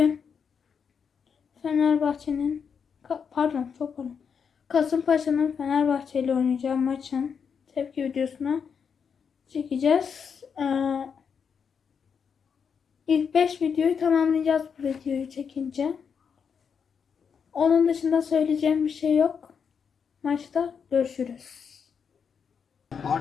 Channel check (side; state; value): right; quieter; 6.6 dB